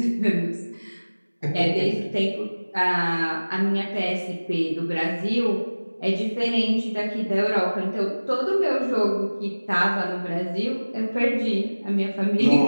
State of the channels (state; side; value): inverted; both; correlation -1.00